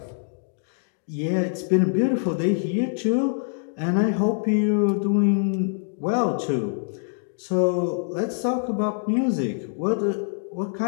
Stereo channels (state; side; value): silent; right; digital silence